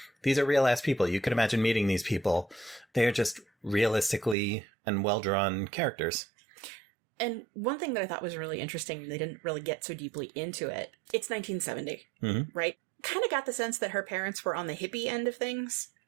These are real-ass people. You could imagine meeting these people. They are just realistically and well-drawn characters. And one thing that I thought was really interesting, they didn't really get so deeply into it. It's 1970, right? Kind of got the sense that her parents were on the hippie end of things.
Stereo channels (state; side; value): drops out; left; at 4.4 s